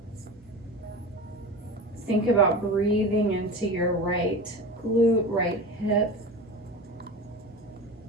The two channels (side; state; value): both; normal; correlation 0.30